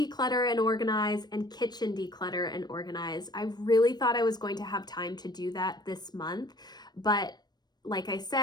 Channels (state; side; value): late; right; 0.20 ms